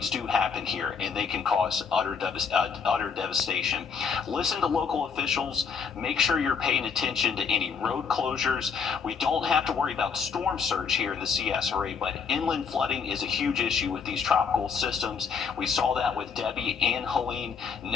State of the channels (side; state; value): right; quieter; 6.0 dB